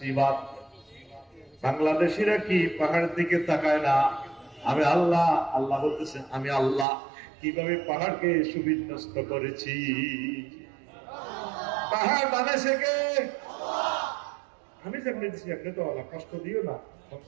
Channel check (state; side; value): drops out; left; at 6.9 s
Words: বাংলাদেশিরা কি পাহাড়ের দিকে তাকায় না আমি আল্লাহ। আল্লাহ বলতেছেন আমি আল্লাহ কিভাবে পাহাড়কে সুবিন্যস্ত করেছি। পাহাড় বানাইছে কে? আমি যেমনি দিচ্ছি আপনি তো আল্লাহ, কষ্ট দিও না,